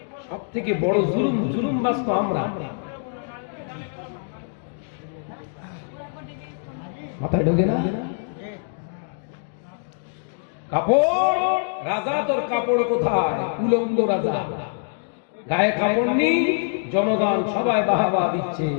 সব থেকে বড় জুলুম, জুলুম বাস্তব আমরা। মাথায় ঢোকে না? কাপড় রাজা, তোর কাপড় কোথায়? উলঙ্গ রাজা, গায়ে কাপড় নেই, জনগণ সবাই বাহাবা দিচ্ছে।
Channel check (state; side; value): silent; right; digital silence